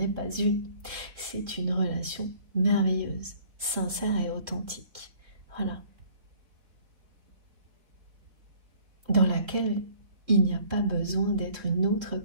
pas une. C'est une relation merveilleuse, sincère et authentique. Voilà. Dans laquelle il n'y a pas besoin d'être une autre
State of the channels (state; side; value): late; left; 3.9 ms